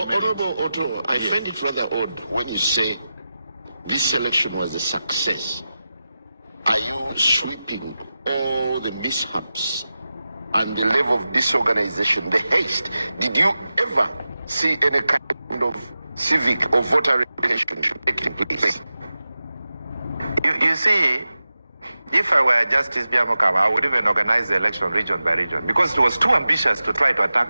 merit. Honorable Otto, I find it rather odd when you say this election was a success. Are you sweeping all the mishaps and the level of disorganization, the haste? Did you ever see any kind of civic or voter relationship taking place? You see, if I were Justice Byabakama, I would even organize the election region by region because it was too ambitious to try to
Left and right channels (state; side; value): inverted; both; correlation -0.93